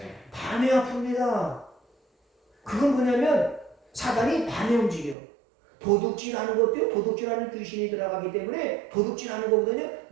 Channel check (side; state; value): left; drops out; at 5.2 s